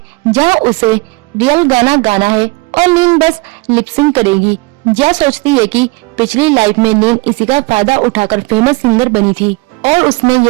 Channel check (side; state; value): left; quieter; 24.7 dB